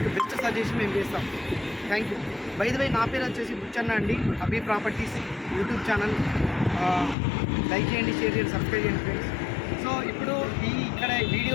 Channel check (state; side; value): drops out; right; at 7.2 s